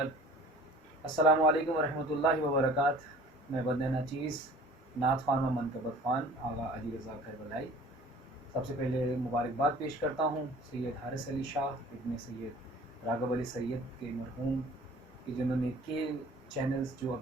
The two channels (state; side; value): normal; both; correlation 0.48